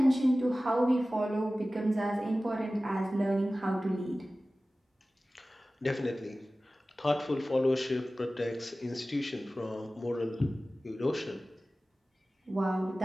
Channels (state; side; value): normal; both; correlation 0.96